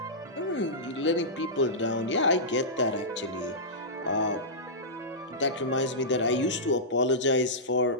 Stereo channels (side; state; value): both; normal; correlation -0.14